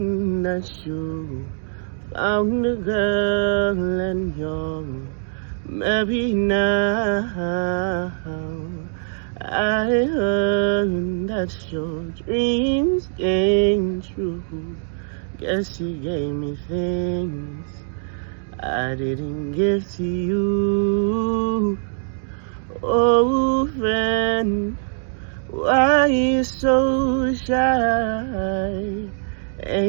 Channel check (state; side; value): silent; left; digital silence